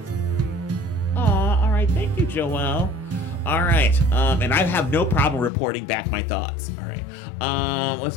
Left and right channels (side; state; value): right; drops out; at 5.5 s